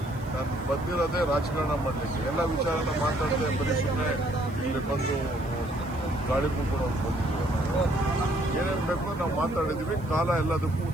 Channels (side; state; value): right; noise; hiss, 26 dB below the sound